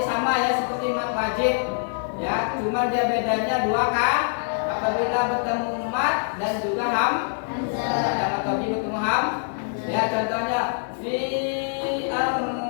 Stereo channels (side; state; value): right; silent; digital silence